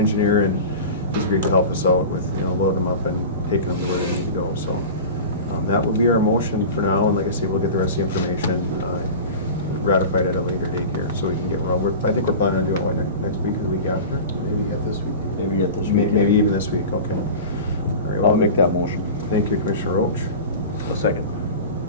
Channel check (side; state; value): both; inverted; correlation -0.32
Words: and he's agreed to help us out with, load them up and taking them to where they need to go. So that will be our motion for now. And like I say, we'll get the rest of the information ratified at a later date here, so we can get rolling. I think we're planning on doing it next week or the week after. Maybe yet this week. Maybe yet this week. Maybe even this week. Okay. All right. I'll make that motion. Thank you, Commissioner Roach. A second.